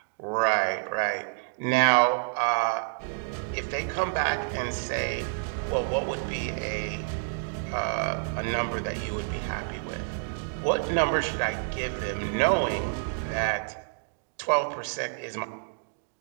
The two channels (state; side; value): silent; left; digital silence